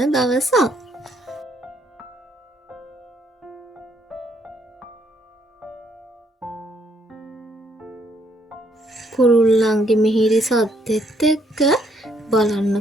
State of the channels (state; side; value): normal; both; correlation 0.69